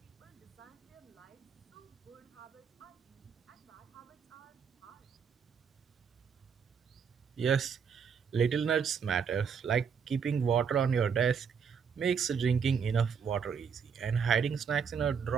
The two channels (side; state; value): left; quieter; 6.6 dB